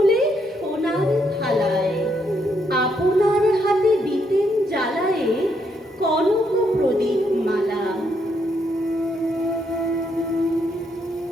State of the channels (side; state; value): both; normal; correlation 0.75